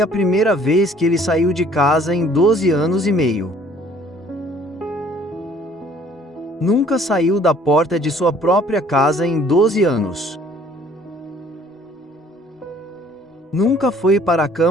primeira vez que ele saiu de casa em 12 anos e meio. Nunca saiu da porta de sua própria casa em 12 anos. Nunca foi para a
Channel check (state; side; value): normal; both; correlation 0.57